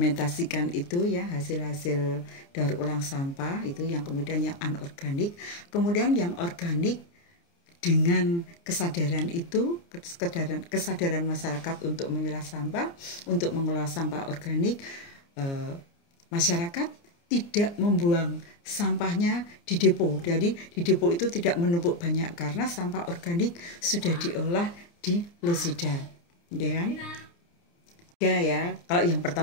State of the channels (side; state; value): right; late; 29 ms